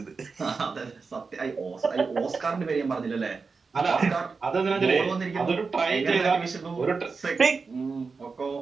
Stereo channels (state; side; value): quieter; left; 4.7 dB